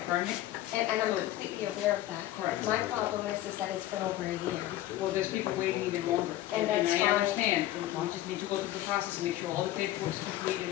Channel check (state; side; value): quieter; right; 14.5 dB